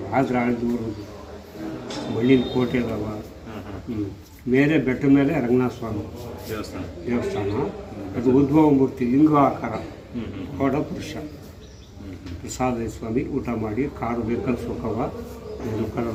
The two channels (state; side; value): identical; both; correlation 1.00